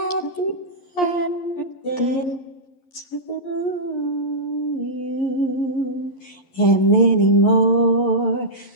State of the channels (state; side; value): late; right; 11 ms